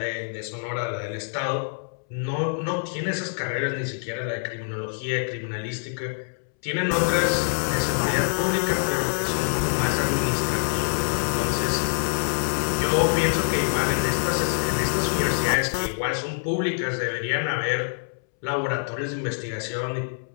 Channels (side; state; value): right; silent; 61 dB below the other